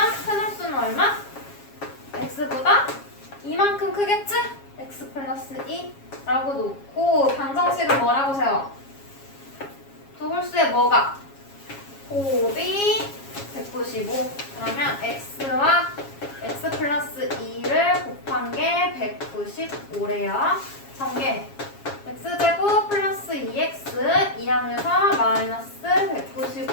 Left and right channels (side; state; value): right; late; 7.3 ms